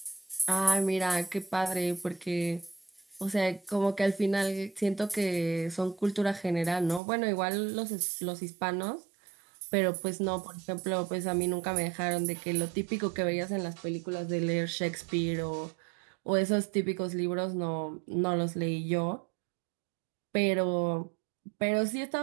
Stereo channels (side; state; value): left; drops out; at 7.0 s